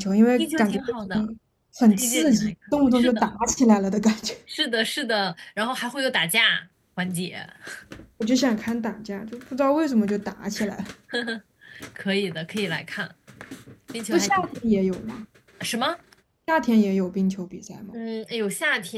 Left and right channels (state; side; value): identical; both; correlation 1.00